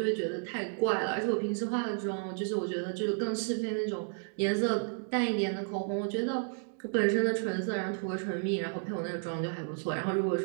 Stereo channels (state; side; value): silent; left; digital silence